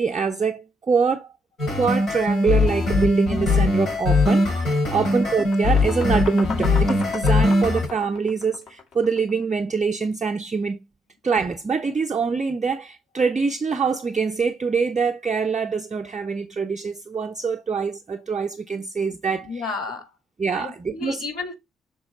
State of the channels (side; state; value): both; normal; correlation 0.76